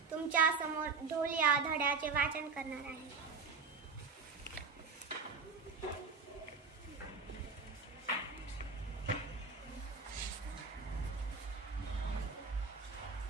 तुमच्या समोर ढोल या धड्याचे वाचन करणार आहे.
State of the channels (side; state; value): left; quieter; 4.9 dB